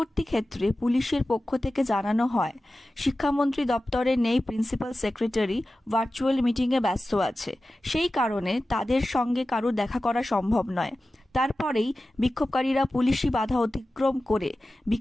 ক্ষেত্রে পুলিশের পক্ষ থেকে জানানো হয়, শিক্ষামন্ত্রী দপ্তরে নেই প্রিন্সিপাল সেক্রেটারি, ভার্চুয়াল মিটিংয়ে ব্যস্ত আছে, সেই কারণে তাদের সঙ্গে কারো দেখা করা সম্ভব নয়। তারপরেই বিক্ষোভকারীরা পুলিশি বাধা অতিক্রম করে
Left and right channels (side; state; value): both; normal; correlation 0.95